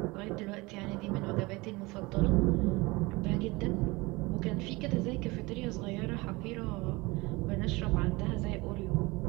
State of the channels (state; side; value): quieter; left; 23.3 dB